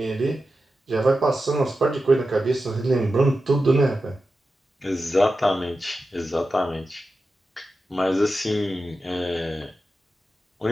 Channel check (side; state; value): both; normal; correlation 0.92